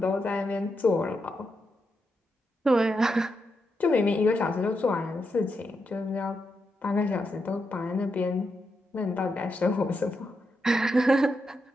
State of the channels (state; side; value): normal; both; correlation 0.84